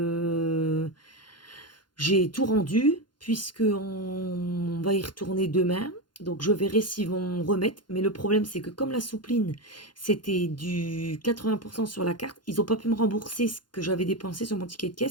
j'ai tout rendu, puisque on va y retourner demain. Donc je verrai s'ils vont remettre. Mais le problème, c'est que comme la soupline, c'était du 80% sur la carte, ils n'ont pas pu me rembourser ce que j'avais dépensé sur mon ticket de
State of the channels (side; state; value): right; late; 0.71 ms